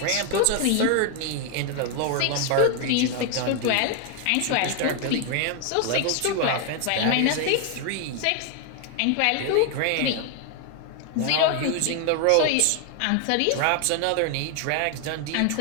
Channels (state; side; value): different; both; correlation 0.00